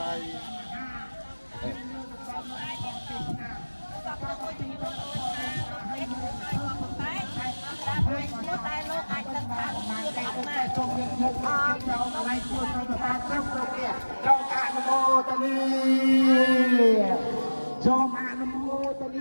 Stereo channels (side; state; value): both; inverted; correlation -1.00